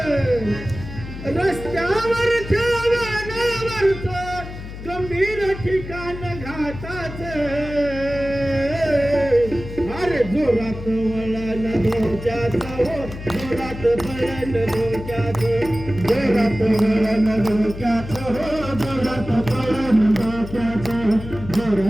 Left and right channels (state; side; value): noise; left; hum, 11 dB below the sound